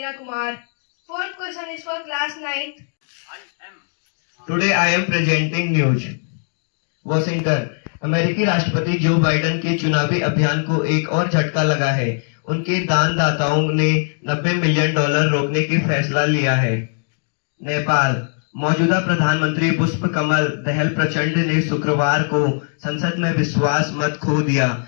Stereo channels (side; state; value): right; silent; 59 dB below the other